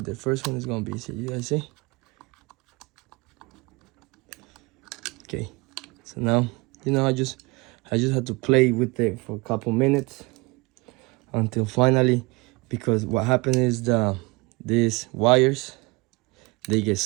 the first one is gonna be. See, you guys see? Okay. So now, you know, I just had to play with it for a couple minutes until finally, because what happened is these wires, they get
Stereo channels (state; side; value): quieter; left; 26.0 dB